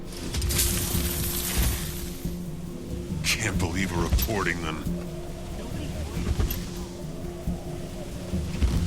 Can't believe we're reporting them.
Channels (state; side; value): identical; both; correlation 1.00